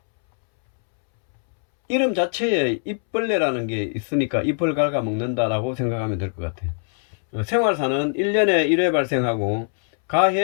이름 자체에 잎벌레라는 게 있으니까 잎을 갉아먹는다라고 생각하면 될 것 같아요. 생활사는 1년에 1회 발생하고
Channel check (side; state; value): right; silent; 64 dB below the other